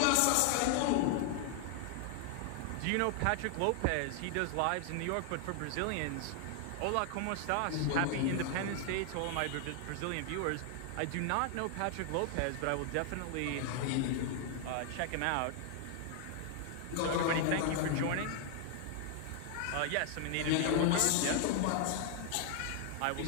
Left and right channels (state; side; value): different; both; correlation 0.00